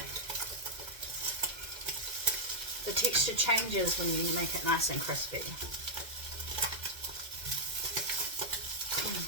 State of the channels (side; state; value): left; late; 2.1 ms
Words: The texture changes when you make it nice and crispy.